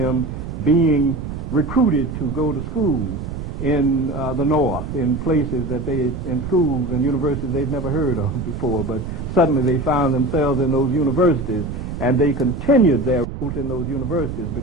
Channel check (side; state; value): right; noise; rumble, 7 dB below the sound